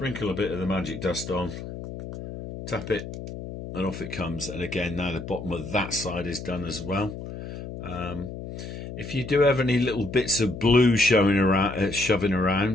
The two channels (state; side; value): noise; left; hum, 9 dB below the sound